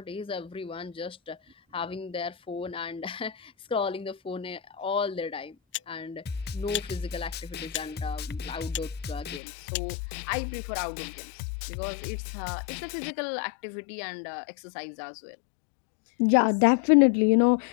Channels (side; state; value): right; drops out; at 9.4 s